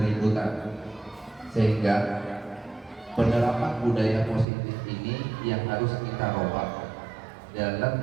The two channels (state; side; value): drops out; left; at 4.5 s